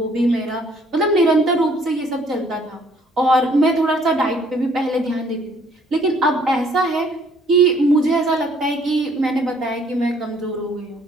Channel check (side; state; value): both; normal; correlation 0.62